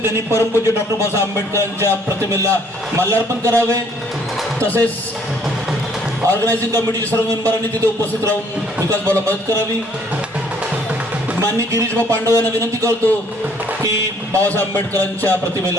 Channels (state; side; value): normal; both; correlation 0.62